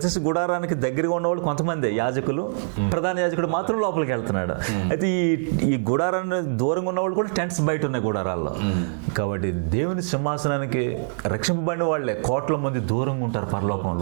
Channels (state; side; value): silent; left; digital silence